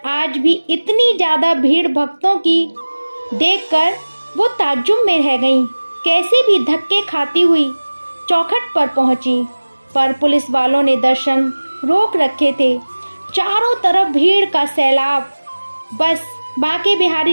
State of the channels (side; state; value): both; inverted; correlation -1.00